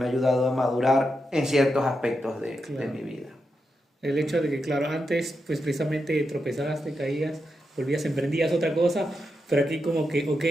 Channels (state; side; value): normal; both; correlation 0.86